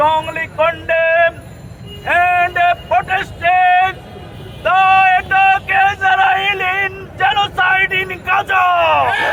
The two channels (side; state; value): both; identical; correlation 1.00